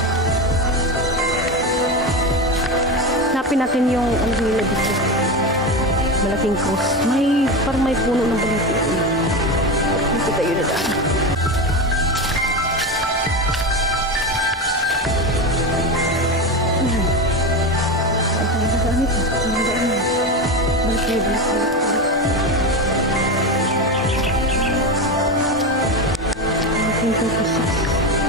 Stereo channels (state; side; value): normal; both; correlation 0.19